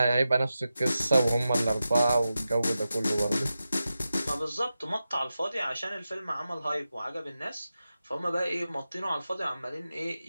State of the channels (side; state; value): both; inverted; correlation -0.91